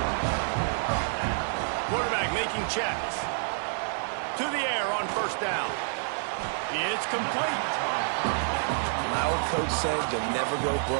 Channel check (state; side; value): silent; left; 59 dB below the other